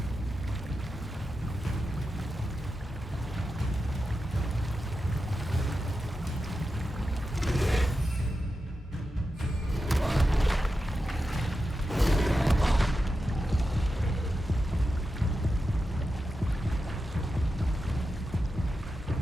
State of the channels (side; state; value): both; normal; correlation 0.90